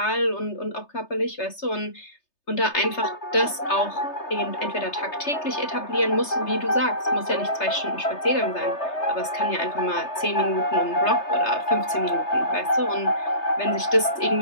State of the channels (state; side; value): late; right; 3.3 ms